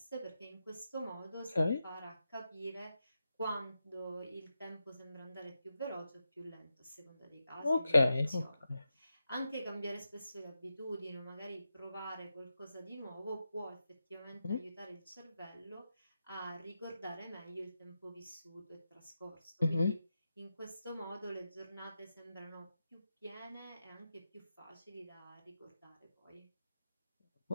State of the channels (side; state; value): both; inverted; correlation -0.89